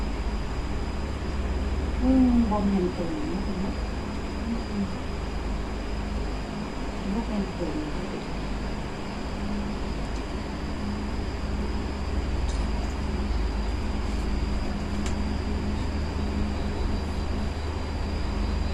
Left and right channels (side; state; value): both; identical; correlation 1.00